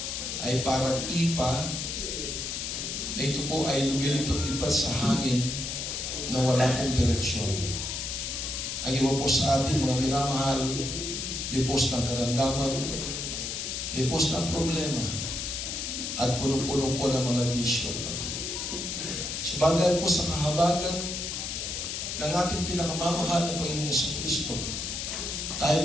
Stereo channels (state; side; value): noise; left; hiss, 4 dB below the sound